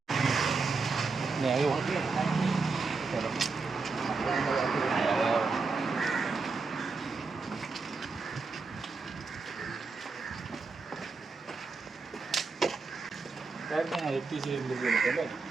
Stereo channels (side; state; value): left; quieter; 4.3 dB